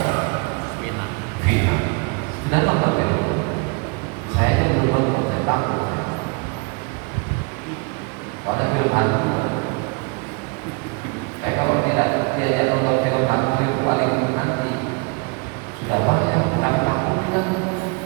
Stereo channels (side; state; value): left; quieter; 32.0 dB